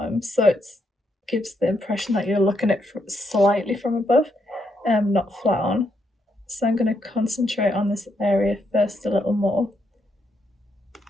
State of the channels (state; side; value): normal; both; correlation 0.78